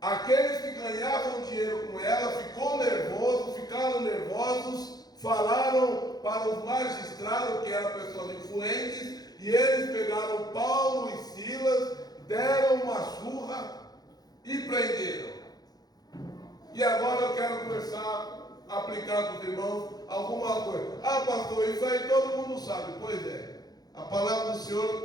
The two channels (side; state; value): right; late; 0.19 ms